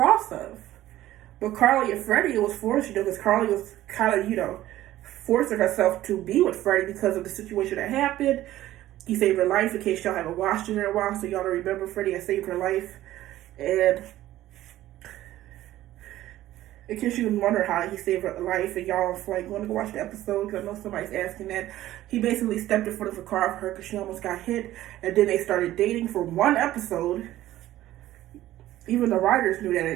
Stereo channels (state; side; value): quieter; left; 14.5 dB